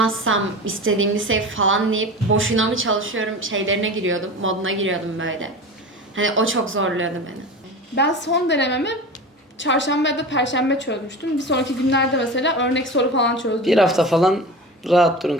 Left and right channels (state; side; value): normal; both; correlation 0.31